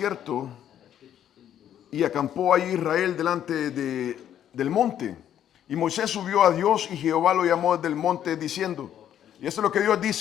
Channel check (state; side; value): quieter; right; 10.3 dB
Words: y acampó ahí Israel delante del monte. Y Moisés subió a Dios y Jehová lo llamó desde el monte diciendo, y esto es lo que Dios